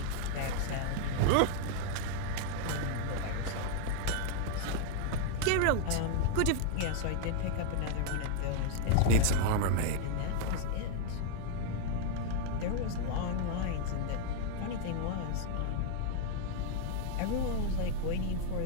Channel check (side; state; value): both; different; correlation 0.00